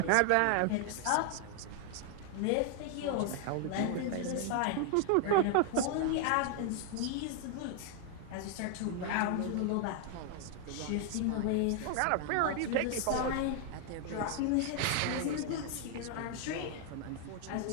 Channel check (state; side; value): different; both; correlation 0.00